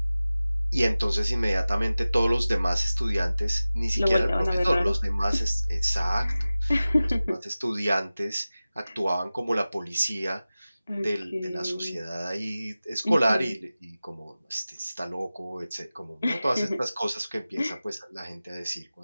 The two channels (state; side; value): inverted; both; correlation -0.97